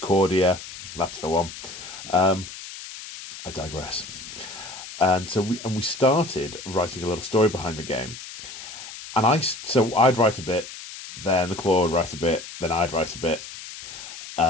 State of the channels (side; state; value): left; noise; hiss, 12 dB below the sound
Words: That's the one. I digress. And so we started writing a little story behind the game. And I'd write a bit, then the Claw would write a bit, then I'd write a bit.